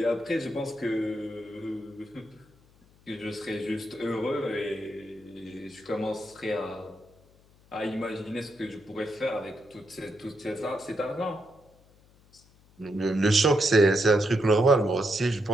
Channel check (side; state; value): left; noise; hum, 29 dB below the sound